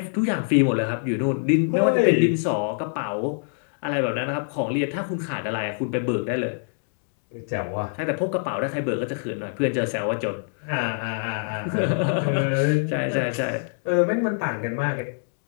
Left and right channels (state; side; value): silent; right; digital silence